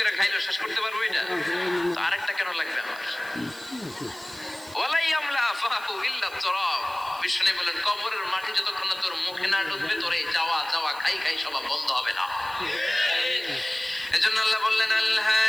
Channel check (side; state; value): right; noise; hiss, 20 dB below the sound